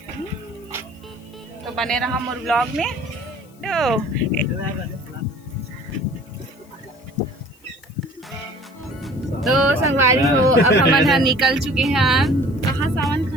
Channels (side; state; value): left; noise; hiss, 30 dB below the sound